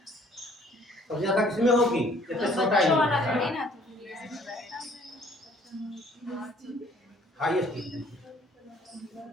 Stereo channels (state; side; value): normal; both; correlation 0.58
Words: सबसे ज्यादा किसमें होगी? जैसे छोटा ही हाईएस्ट,